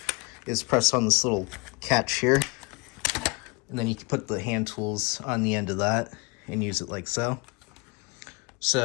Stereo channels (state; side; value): quieter; right; 27.5 dB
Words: is press on this little catch here, and then you can put the hand tools on the end of that and use it like so.